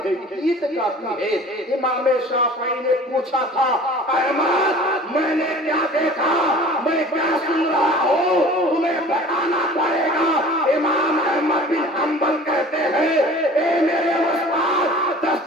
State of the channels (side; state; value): both; normal; correlation 0.44